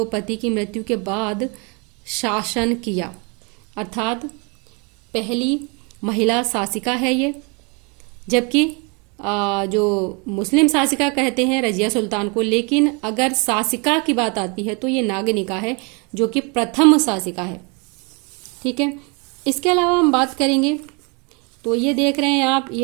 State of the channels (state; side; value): quieter; left; 32.1 dB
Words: की मृत्यु के बाद शासन किया, अर्थात पहली महिला शासिका है ये। जबकि जो मुस्लिम शासिका कहते हैं रजिया सुल्तान को, लेकिन अगर शासिका की बात आती है तो ये नागनिका है जो कि प्रथम शासिका है। ठीक है, इसके अलावा हम बात करेंगे तो ये देख रहे हैं आप,